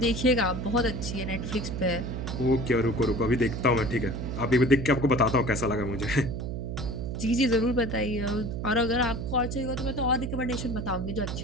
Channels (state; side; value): noise; right; hum, 4 dB below the sound